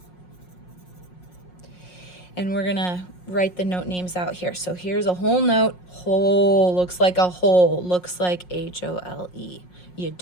And we're going to write the note names out here. So here's a whole note. Whole looks like a hole, looks like H-O-L-E. You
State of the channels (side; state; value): right; late; 5.5 ms